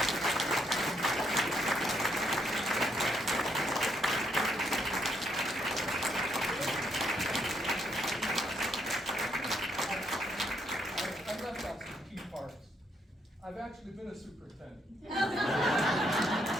I left out some key parts. I've actually been a superintendent. You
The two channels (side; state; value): both; normal; correlation 0.74